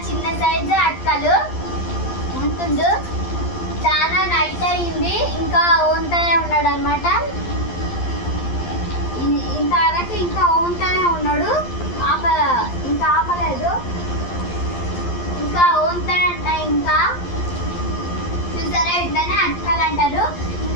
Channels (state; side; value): late; right; 11 ms